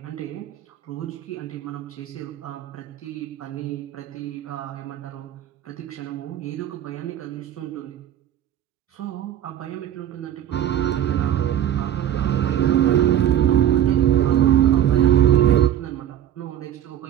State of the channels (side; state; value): left; quieter; 11.0 dB